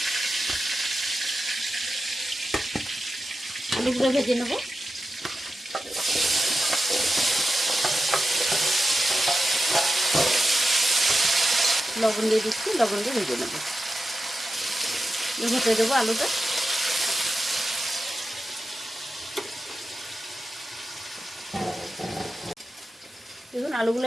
আলুগুলো ভেজে নেব। লবণ দিয়ে দিচ্ছি, লবণ দিয়ে ভেজে নেব। হতে দেবো আলুটা। দেখুন আলুগুলো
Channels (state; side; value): normal; both; correlation 0.91